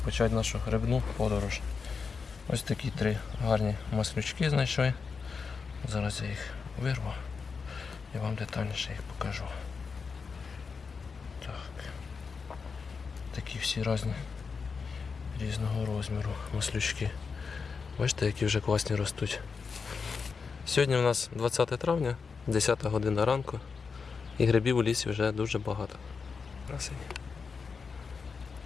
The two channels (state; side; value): quieter; right; 5.2 dB